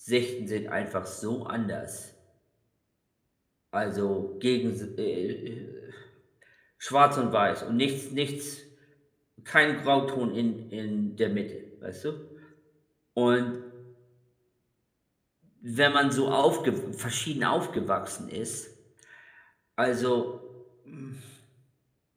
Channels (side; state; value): both; identical; correlation 1.00